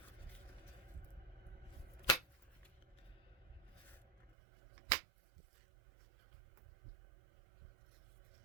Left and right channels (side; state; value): left; drops out; at 4.4 s